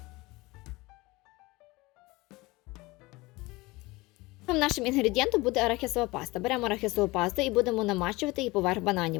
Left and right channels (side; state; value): right; quieter; 22.0 dB